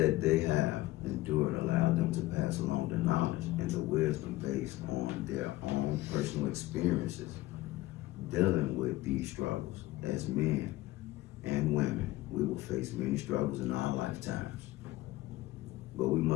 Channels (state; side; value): quieter; right; 17.7 dB